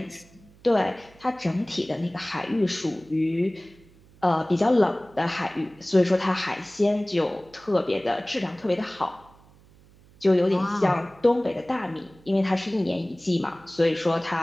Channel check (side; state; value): right; noise; hum, 27 dB below the sound